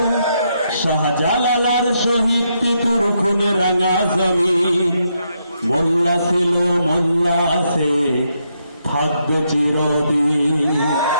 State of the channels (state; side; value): inverted; both; correlation -0.79